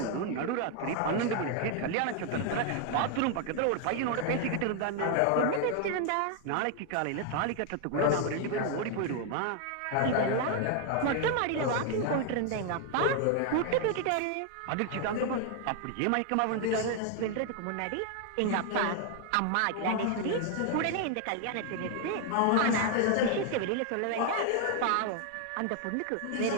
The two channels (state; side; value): different; both; correlation 0.00